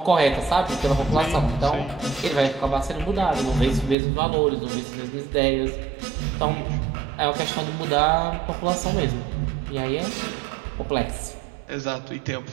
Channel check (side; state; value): left; drops out; at 4.0 s